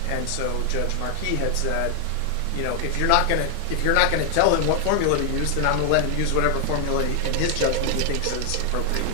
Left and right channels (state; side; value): different; both; correlation 0.00